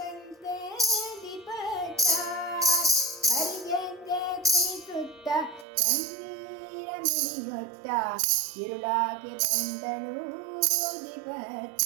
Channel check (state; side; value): drops out; left; at 5.7 s